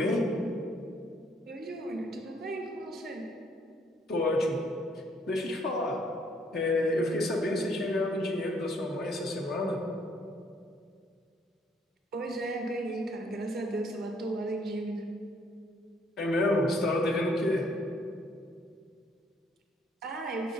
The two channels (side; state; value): both; normal; correlation 0.65